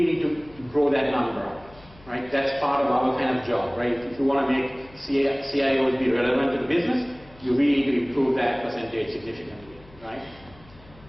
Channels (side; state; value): left; noise; hum, 24 dB below the sound